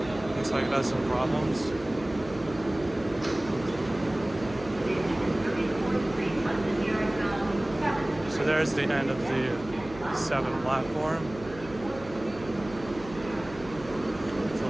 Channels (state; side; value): noise; right; hum, 17 dB below the sound